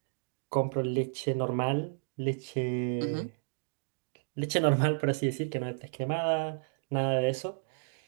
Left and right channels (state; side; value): silent; left; digital silence